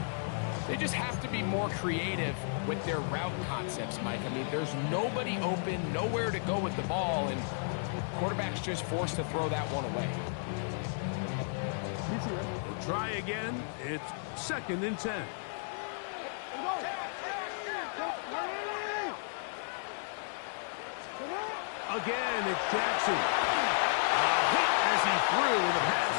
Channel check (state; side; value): silent; right; digital silence